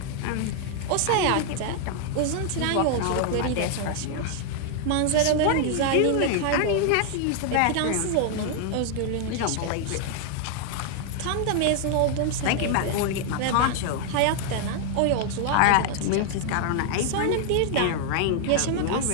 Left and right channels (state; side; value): different; both; correlation 0.00